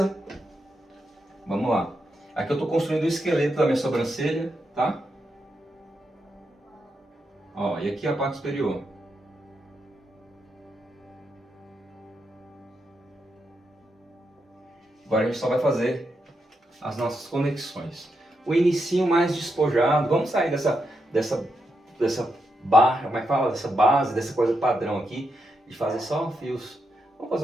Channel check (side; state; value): both; normal; correlation 0.84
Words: Vamos lá. Aqui eu estou construindo o esqueleto da minha sobrancelha, tá? Ó, e aqui a parte superior. Agora a gente só vai fazer as nossas conexões. O inicinho mais despojado. Vamos sair dessa barra, como é que fala? Dessa base, dessa coisa padrão aqui, de fazer só fios. Vamos fazer